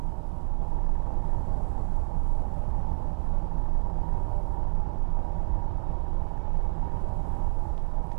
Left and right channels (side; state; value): left; silent; 60 dB below the other